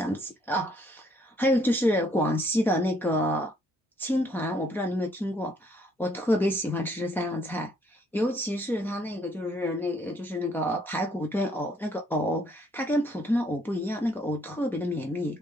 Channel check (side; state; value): both; normal; correlation 0.66